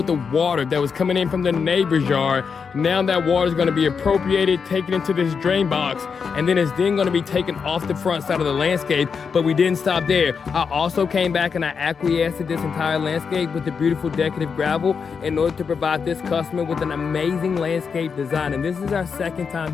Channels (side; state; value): right; quieter; 5.9 dB